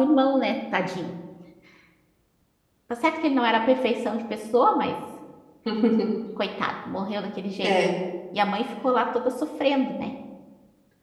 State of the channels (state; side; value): identical; both; correlation 1.00